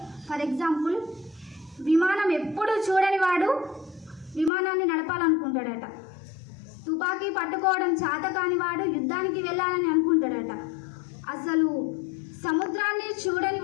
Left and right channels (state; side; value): drops out; right; at 4.5 s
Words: ఫర్ ఎగ్జాంపుల్, విమానం ఎప్పుడు చూడని వాడు విమానాన్ని నడపాలనుకుంటాడట. తుపాకీ పట్టుకోవడం చేత కాని వాడు యుద్ధానికి వెళ్ళాలని అనుకుంటాడట. అసలు సముద్రాన్ని చూడని